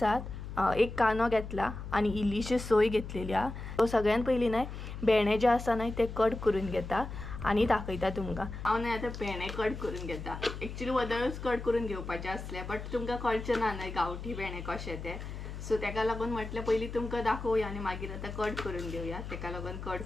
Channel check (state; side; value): noise; left; hum, 9 dB below the sound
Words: एक कांदो घेतला आनी इल्लीशी सोय घेतलेली आहा. सो सगळ्यान पयलीं न्हय भेंडे जे आसा न्हय ते कट करून घेता. आनी दाखयता तुमकां। हांव न्हय आतां भेंडे कट करून घेता। एक्चुअली वदळूच कट करून घेवपाचे आसले बट तुमकां कळचें ना न्हय गांवठी भेंडे कशे ते, सो तेका लागून म्हटलें पयलीं तुमकां दाखोवया आनी मागीर आतां कट करून घेवया। तेका लागून कट